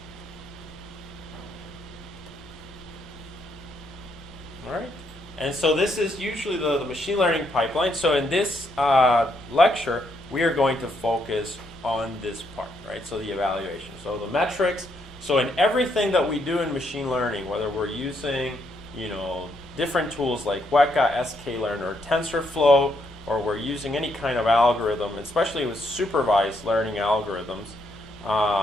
All right. And so this is usually the machine learning pipeline. So in this lecture, we are going to focus on this part, right? So the evaluation. So the metrics. So in everything that we do in machine learning, whether we're using, you know, different tools like Weka, sklearn, or TensorFlow, or we're using any kind of algorithm, especially with supervised learning algorithms,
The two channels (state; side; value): normal; both; correlation 0.75